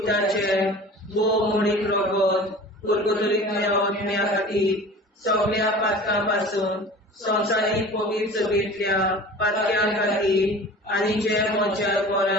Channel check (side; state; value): both; normal; correlation 0.40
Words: मोडीक रगत पुर्गोतरींतल्या आत्म्या खातीर सगळ्या पातकां पासून संवसारीक पवित्र सभेंतल्या पातक्यां खातीर आनी जे म्हज्या